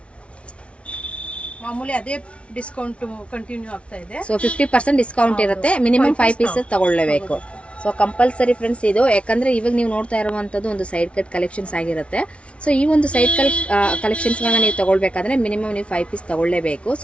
ಮಾಮೂಲಿ ಅದೇ ಡಿಸ್ಕೌಂಟ್ ಕಂಟಿನ್ಯೂ ಆಗ್ತಾ ಇದೆ. ಸೊ 50% ಡಿಸ್ಕೌಂಟ್ ಇರುತ್ತೆ. ಮಿನಿಮಮ್ 5 ಪೀಸಸ್ ತಗೊಳ್ಳೇಬೇಕು. ಸೊ ಕಂಪಲ್ಸರಿ ಫ್ರೆಂಡ್ಸ್ ಇದು, ಯಾಕಂದ್ರೆ ಇವಾಗ ನೀವು ನೋಡ್ತಾ ಇರುವಂತದ್ದು ಒಂದು ಸೈಡ್ ಕಟ್ ಕಲೆಕ್ಷನ್ಸ್ ಆಗಿರುತ್ತೆ. ಸೊ ಈ ಒಂದು ಸೈಡ್ ಕಲೆಕ್ಷನ್ಸ್ಗಳನ್ನ ನೀವು ತಗೊಳ್ಬೇಕಾದ್ರೆ ಮಿನಿಮಮ್ ನೀವು 5 ಪೀಸ್ ತಗೊಳ್ಳೇಬೇಕು.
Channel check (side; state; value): right; late; 0.061 ms